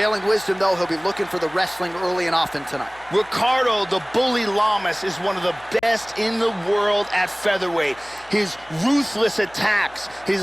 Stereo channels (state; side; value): noise; left; hum, 26 dB below the sound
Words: wisdom, though, he'll be looking for the wrestling early and often tonight. Ricardo, the bully Lamas, is one of the best in the world at featherweight. His ruthless attacks,